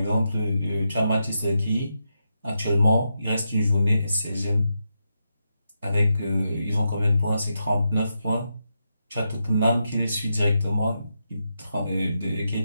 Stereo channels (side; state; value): both; inverted; correlation -0.85